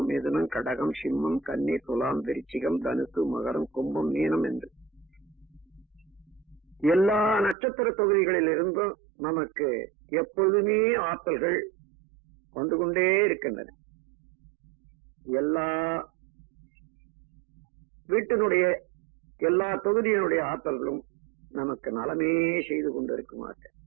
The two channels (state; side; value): drops out; left; at 7.6 s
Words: மிதுனம், கடகம், சிம்மம், கன்னி, துலாம், விருச்சிகம், தனுசு, மகரம், கும்பம், மீனம் என்று எல்லா நட்சத்திர தொகுதிகளில் இருந்தும் நமக்கு எப்பொழுதுமே ஆற்றல்கள் வந்து கொண்டே இருக்கின்றன. எல்லா வீட்டினுடைய எல்லா தொகுதியினுடைய ஆற்றல்களும் நமக்கு நலமே செய்து கொண்டிருக்குமாக